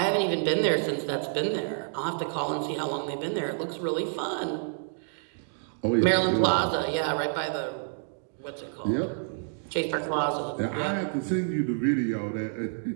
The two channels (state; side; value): silent; left; digital silence